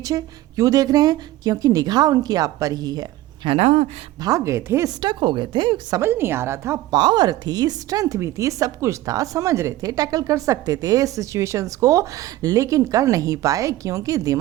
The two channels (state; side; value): quieter; left; 15.8 dB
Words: क्यों देख रहे हैं? क्योंकि निगाह उनकी आप पर ही है ना। भाग गए थे, स्टक हो गए थे, समझ नहीं आ रहा था, पावर थी, स्ट्रेंथ भी थी, सब कुछ था, समझ रहे थे, टैकल कर सकते थे सिचुएशंस को, लेकिन कर नहीं पाए क्योंकि